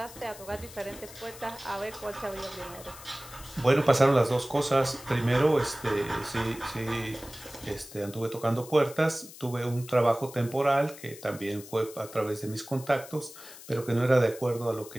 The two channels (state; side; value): noise; left; hiss, 17 dB below the sound